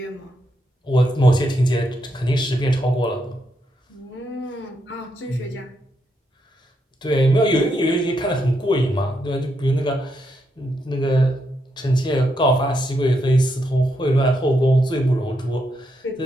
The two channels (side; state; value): both; normal; correlation 0.80